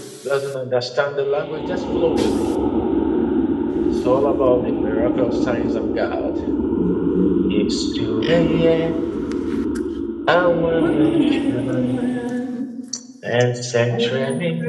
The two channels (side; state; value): both; identical; correlation 1.00